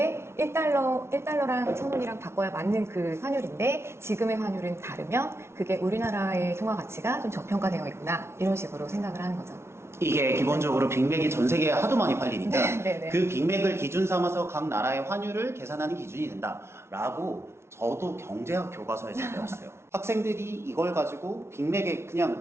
1달러랑 1,000원이랑 바꿔야 맞는 그 환율인데 지금의 환율은 다르면 그게 우리나라의 통화 가치가 좀 저평가되어 있구나. 이런 식으로 생각을 하는 거죠. 이게 기본적으로 빅맥이 전 세계에 하도 많이 팔리니까 네. 그 빅맥을 기준 삼아서 각 나라의 환율을 계산하는 기준이 된다라고 저도 경제학 교과서에서 배웠어요. 학생들이 이걸 가지고 빅맥에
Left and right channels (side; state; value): left; late; 0.13 ms